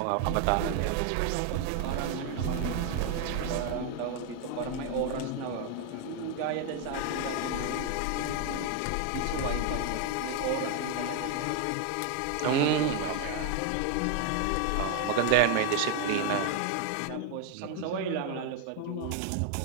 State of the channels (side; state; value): both; different; correlation 0.01